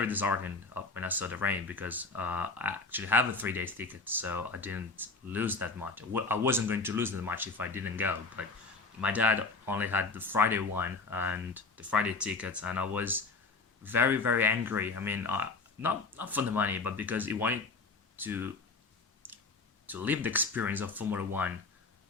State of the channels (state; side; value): quieter; right; 4.1 dB